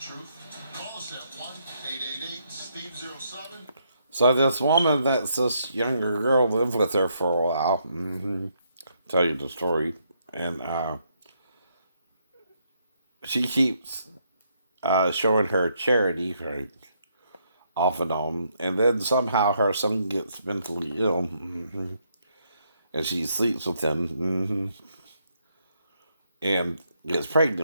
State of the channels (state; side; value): inverted; both; correlation -0.75